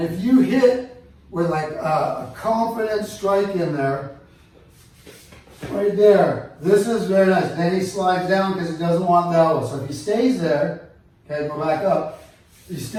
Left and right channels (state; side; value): identical; both; correlation 1.00